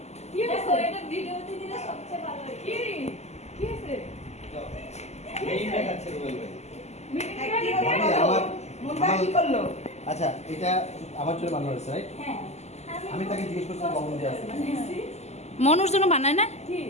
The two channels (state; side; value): late; right; 0.32 ms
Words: কি হয়েছে এটা ভিডিওতে দিলে সবচেয়ে ভালো হয় কি কি হয়েছে এই দেখাচ্ছে রুবেল ভাই। আমার মুন্ডা কি করলো? আচ্ছা এটা আমার চুলে বানানো হয়েছে রাইট? হ্যাঁ আমি তাকে জিজ্ঞেস করছি কখন দিয়ে আছে মনুর জন্য বানায় না?